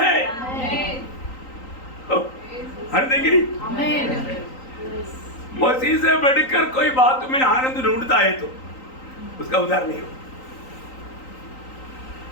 आनंद है कि नहीं? मसीह से बढ़कर कोई बात में आनंद ढूंढता है तो उसका उद्धार नहीं हो।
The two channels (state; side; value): late; right; 3.9 ms